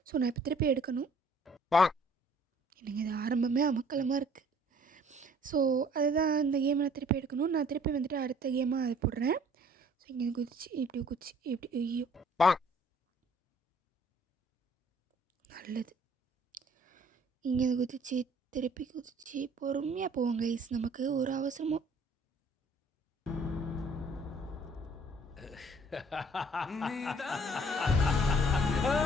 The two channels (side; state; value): both; normal; correlation 0.56